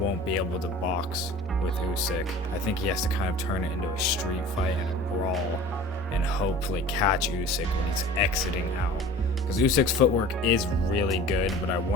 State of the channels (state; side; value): normal; both; correlation 0.42